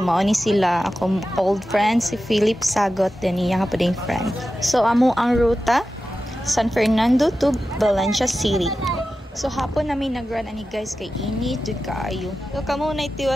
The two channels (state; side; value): normal; both; correlation 0.93